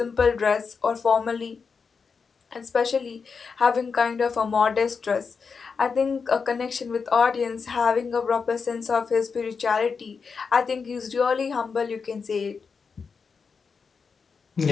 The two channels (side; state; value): right; quieter; 5.4 dB